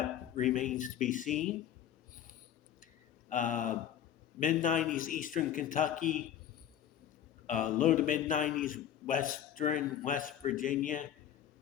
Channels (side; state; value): right; quieter; 10.3 dB